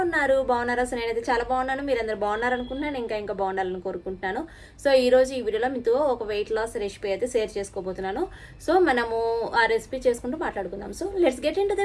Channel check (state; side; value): identical; both; correlation 1.00